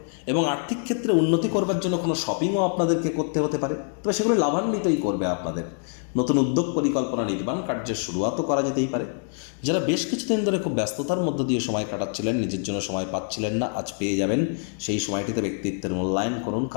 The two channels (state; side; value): silent; right; 57 dB below the other